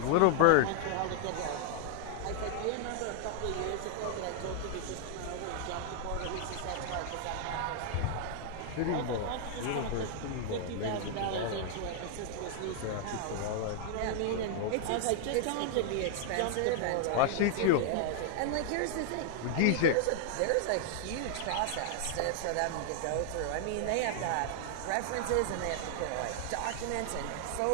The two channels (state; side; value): different; both; correlation 0.00